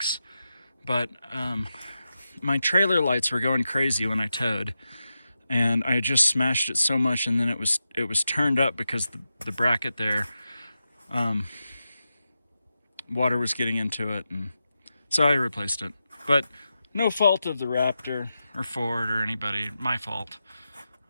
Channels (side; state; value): both; inverted; correlation -0.90